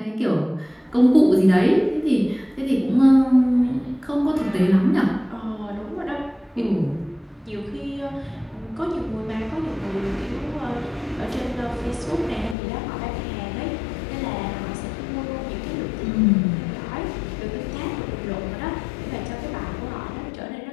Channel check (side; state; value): right; drops out; at 12.6 s